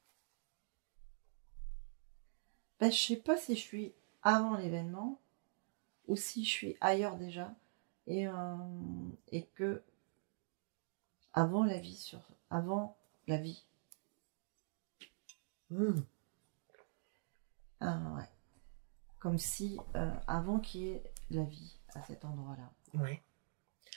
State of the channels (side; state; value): left; silent; digital silence